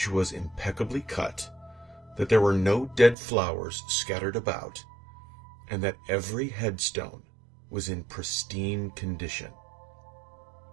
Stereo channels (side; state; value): left; drops out; at 3.2 s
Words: was impeccably cut, that there were no dead flowers scattered about, and that every headstone was in pristine condition.